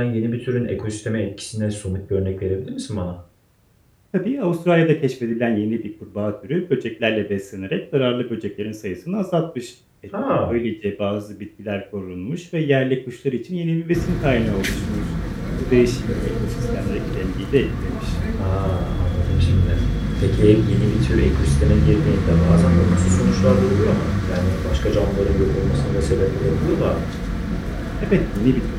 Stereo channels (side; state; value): both; identical; correlation 1.00